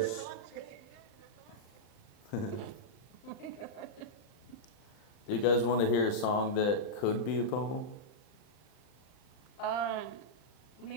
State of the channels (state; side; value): late; right; 39 ms